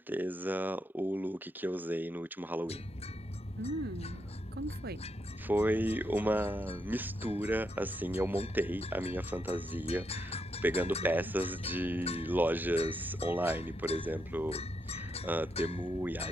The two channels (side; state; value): both; normal; correlation 0.81